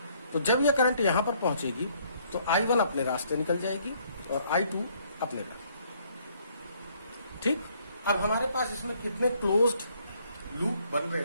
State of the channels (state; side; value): inverted; both; correlation -0.65